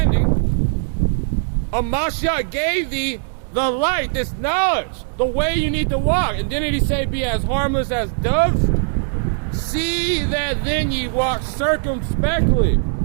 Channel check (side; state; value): left; silent; 66 dB below the other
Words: Mashiach gave thee the light, this knowledge, the way you need to walk. And didn't he say be as harmless as doves? See that then ye walk circumspectly,